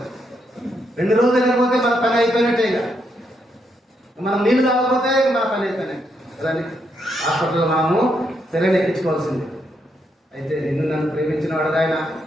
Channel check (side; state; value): both; normal; correlation 0.78